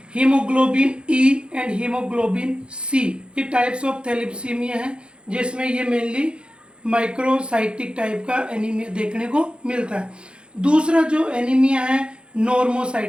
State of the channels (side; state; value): left; late; 0.055 ms